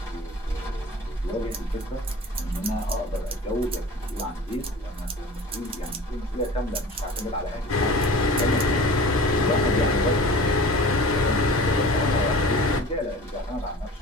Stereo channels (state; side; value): normal; both; correlation 0.40